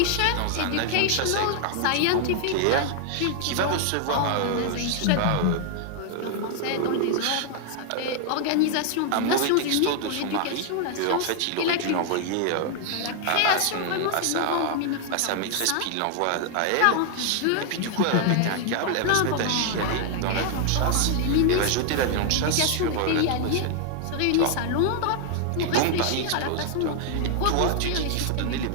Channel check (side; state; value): both; different; correlation 0.00